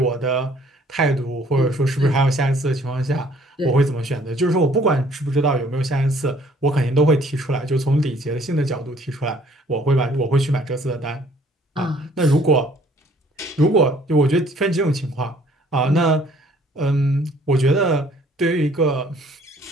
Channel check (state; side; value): normal; both; correlation 0.59